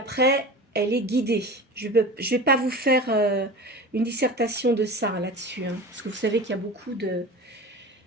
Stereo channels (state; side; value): normal; both; correlation 0.34